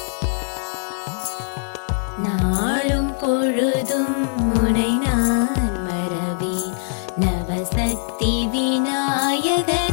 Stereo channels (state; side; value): silent; right; 65 dB below the other